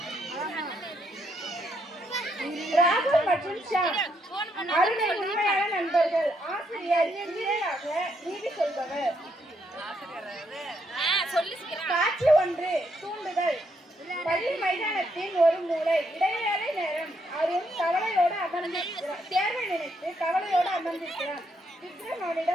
ராகு மற்றும் ஷாம் அருணின் உண்மையான நண்பர்கள். ஆசிரியர் இணையாக நீதி சொல்பவர். காட்சி ஒன்று. தூண்டுதல். பள்ளி மைதானத்தின் ஒரு மூலை. இடைவேளை நேரம். அருண் கவலையோடு அமர்ந்திருக்கிறார். தேர்வை நினைத்து கவலையோடு அமர்ந்திருக்கிறார். விக்ரம்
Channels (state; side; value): normal; both; correlation 0.76